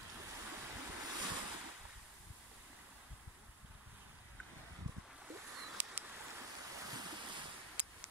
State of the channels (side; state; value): both; normal; correlation 0.12